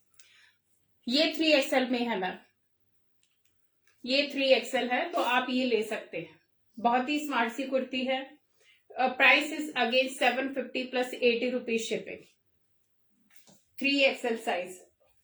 ये 3XL में है मैम, ये 3XL है तो आप ये ले सकते हैं, बहुत ही स्मार्ट सी कुर्ती है। Price is again 750 plus 80 rupees shipping, 3XL size.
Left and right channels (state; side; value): identical; both; correlation 1.00